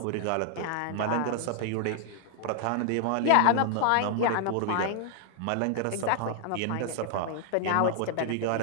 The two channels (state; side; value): different; both; correlation 0.00